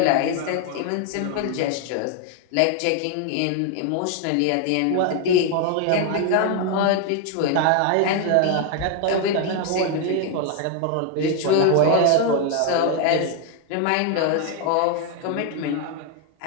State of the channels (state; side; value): different; both; correlation 0.01